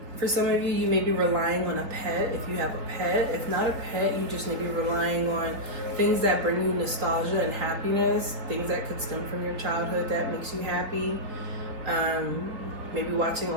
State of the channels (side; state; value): left; late; 4.0 ms